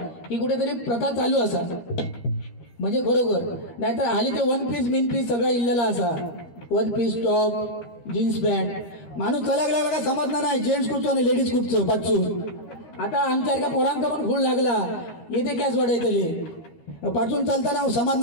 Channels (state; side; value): late; right; 13 ms